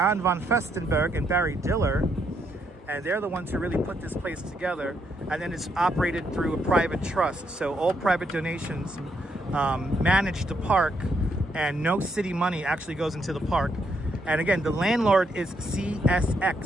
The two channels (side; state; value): both; normal; correlation 0.76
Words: von Festenberg and Barry Diller. And they're the ones who really put this place together. And then it's operated through a private trust. So all private donations manage the park, and no city money actually goes into the park. And again, the landlord is